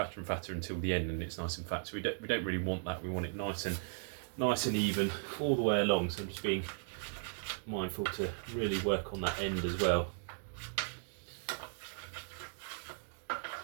and fatter until the end, and it's nice and fat. So we don't really want that. We want it nice and even all the way along. So I'm just being mindful to really work on that end as well.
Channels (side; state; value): left; silent; digital silence